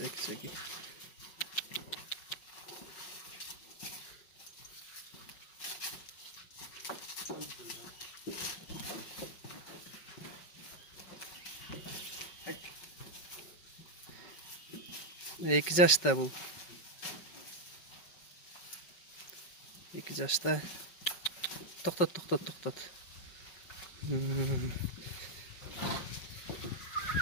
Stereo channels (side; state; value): right; late; 5.4 ms